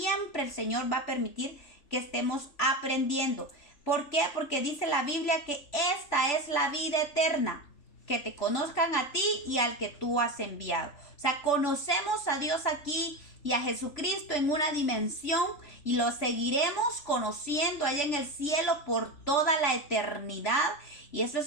el Señor va a permitir que estemos aprendiendo. ¿Por qué? Porque dice la Biblia que esta es la vida eterna, que te conozcan a ti y al que tú has enviado. O sea, conocemos a Dios aquí y a Jesucristo en una dimensión, y lo seguiremos conociendo allá en el cielo por toda la eternidad. Y eso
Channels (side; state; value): right; late; 3.5 ms